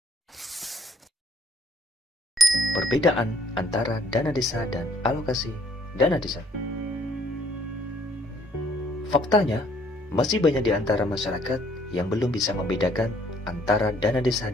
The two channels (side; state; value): both; normal; correlation 0.63